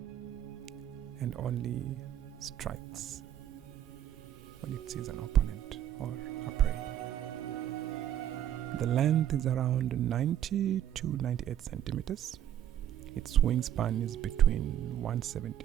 and only strikes when it sees an opponent or a prey. The length is around 90 to 98 centimeters. Its wingspan is between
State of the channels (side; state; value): left; quieter; 11.0 dB